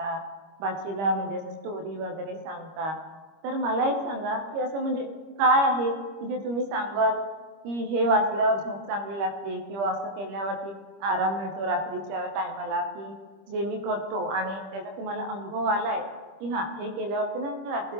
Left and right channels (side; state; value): left; late; 25 ms